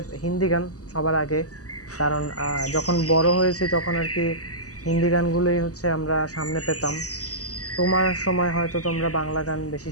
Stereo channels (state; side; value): late; right; 0.66 ms